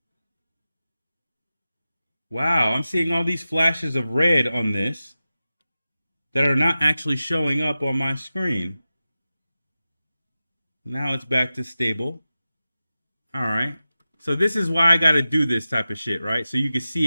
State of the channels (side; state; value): both; inverted; correlation -0.93